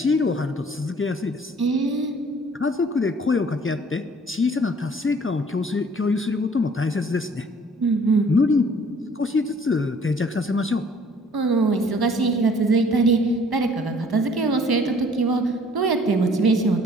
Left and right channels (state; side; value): normal; both; correlation 0.56